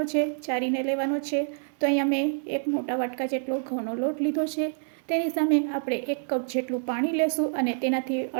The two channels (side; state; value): left; silent; digital silence